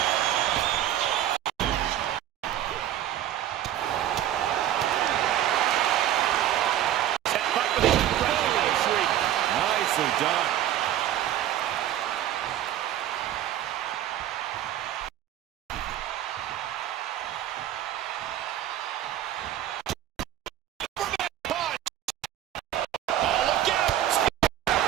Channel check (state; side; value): quieter; left; 12.0 dB